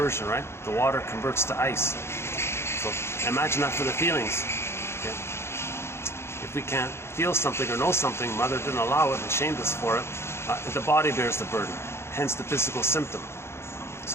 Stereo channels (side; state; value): right; late; 0.12 ms